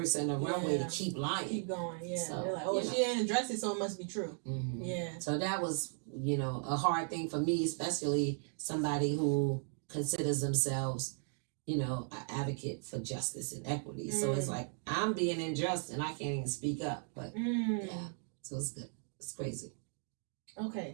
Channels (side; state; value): left; silent; 53 dB below the other